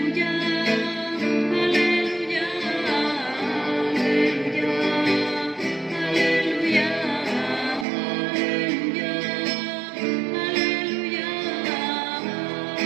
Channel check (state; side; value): drops out; left; at 7.9 s